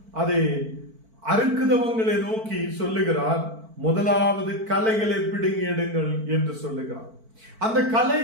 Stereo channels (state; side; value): late; left; 4.5 ms